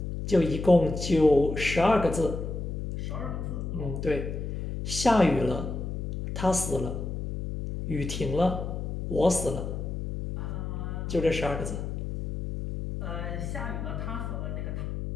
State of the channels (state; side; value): noise; left; hum, 4 dB below the sound